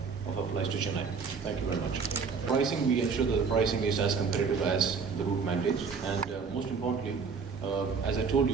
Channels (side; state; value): left; quieter; 5.5 dB